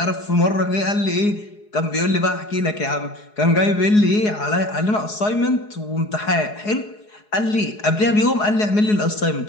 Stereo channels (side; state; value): right; late; 4.8 ms